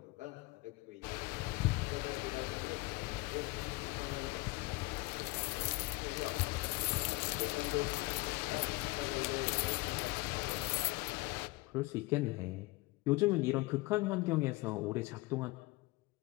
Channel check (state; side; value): quieter; right; 22.4 dB